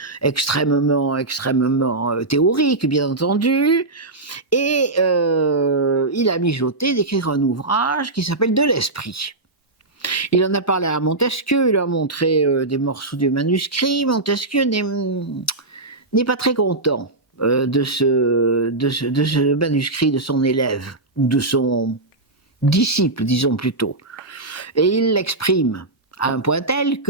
extrêmement théorique, bien entendu, et il a mijoté d'écrire un ouvrage qui s'appelle De l'Esprit. Il en a parlé à Montesquieu, il a montré des morceaux du manuscrit. Montesquieu n'est pas très content de ce manuscrit de son élève, ou de son disciple, disons plutôt. Et il l'exprime à un point tel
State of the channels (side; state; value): left; quieter; 3.0 dB